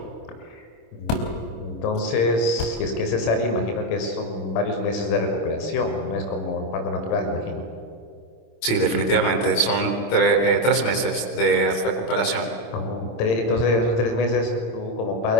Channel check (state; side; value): late; right; 25 ms